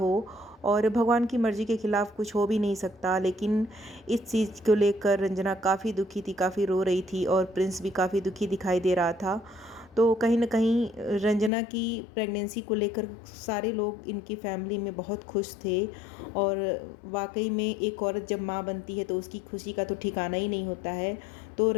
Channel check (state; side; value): drops out; right; at 11.5 s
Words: और भगवान की मर्ज़ी के ख़िलाफ़ कुछ हो भी नहीं सकता। लेकिन इस चीज़ को लेकर रंजना काफ़ी दुखी थी, काफ़ी रो रही थी, और प्रिंस भी काफ़ी दुखी दिखाई दे रहा था। तो कहीं न कहीं रंजना की प्रेगनेंसी को लेकर सारे लोग इनकी फैमिली में बहुत खुश थे। और वाक़ई में एक औरत जब माँ बनती है तो उसकी खुशी का तो ठिकाना ही नहीं होता है। तो